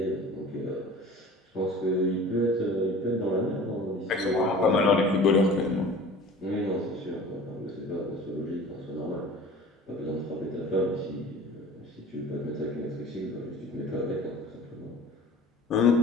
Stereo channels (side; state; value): both; normal; correlation 0.42